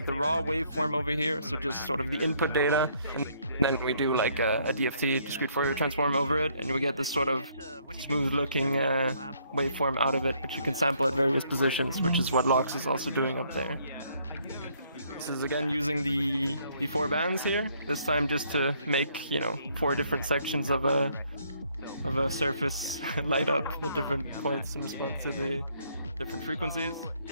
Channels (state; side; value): inverted; both; correlation -0.67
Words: the raw waveform over here, so just sort of the input data, and then we do like a DFT, discrete Fourier transform over it, and we get this sort of smooth-looking waveform out of it, which you can sample at various positions, which is what Lox is also doing up there. This is again using the 4 bands here, this time just to make, you know, 4 different sections of a surface light up at different points in response to the different frequencies.